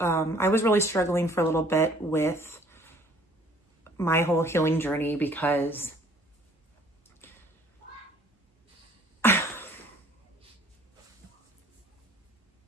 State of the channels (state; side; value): normal; both; correlation 0.57